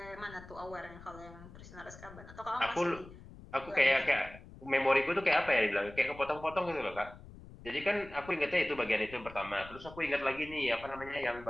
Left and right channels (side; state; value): left; noise; rumble, 18 dB below the sound